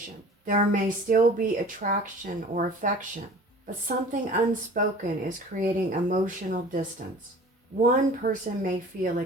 There may still be attraction or affection, but something unspoken is creating emotional distance. One person may feel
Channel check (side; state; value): both; normal; correlation 0.44